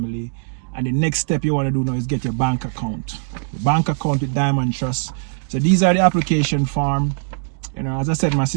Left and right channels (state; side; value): silent; left; digital silence